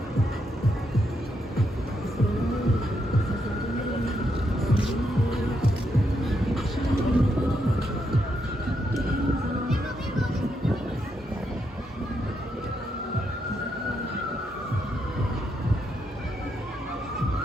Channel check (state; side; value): normal; both; correlation 0.80